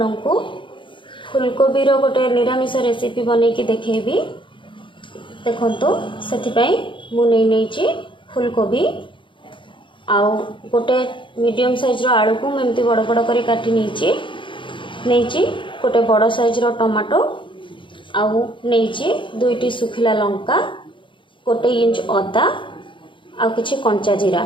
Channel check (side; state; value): right; late; 0.24 ms